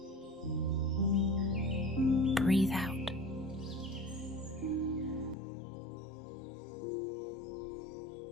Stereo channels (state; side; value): drops out; right; at 5.4 s